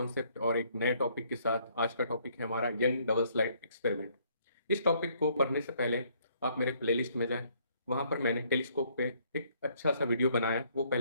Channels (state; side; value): inverted; both; correlation -0.66